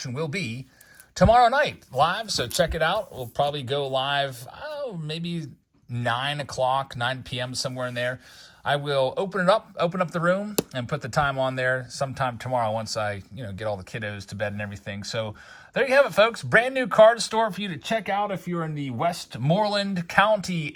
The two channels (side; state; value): both; identical; correlation 1.00